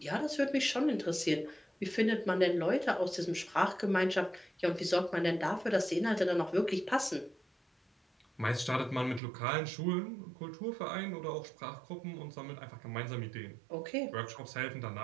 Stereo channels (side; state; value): left; drops out; at 9.2 s